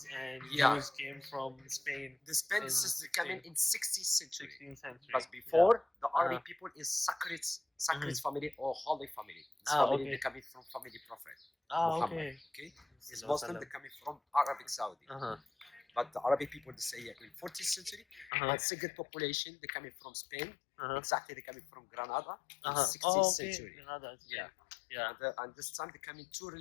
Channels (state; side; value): drops out; right; at 18.3 s